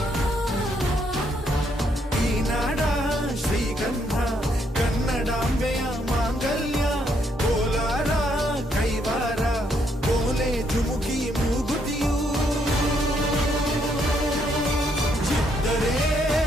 ಈ ನಾಡ ಶ್ರೀಗಂಧ ಕನ್ನಡಾಂಬೆಯ ಮಾಂಗಲ್ಯ ಕೋಲಾರ ಕೈವಾರ ಕೋಲೆ ಜುಮುಕಿ ಮೂಗುತಿಯು ಚಿತ್ತರೇ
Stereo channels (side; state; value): both; normal; correlation 0.73